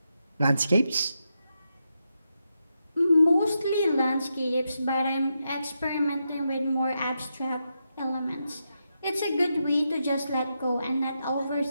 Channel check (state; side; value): inverted; both; correlation -0.85